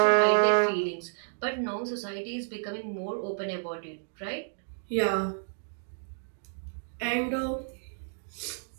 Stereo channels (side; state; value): left; silent; digital silence